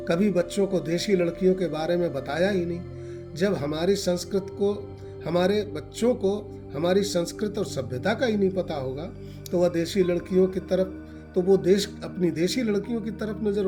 कभी बच्चों को देशी लड़कियों के बारे में बताया ही नहीं। जब हमारे बच्चों को हमारी संस्कृत और सभ्यता का ही नहीं पता होगा तो वह देशी लड़कियों की तरफ अपनी देशी लड़कियों की तरफ नजर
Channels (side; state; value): both; identical; correlation 1.00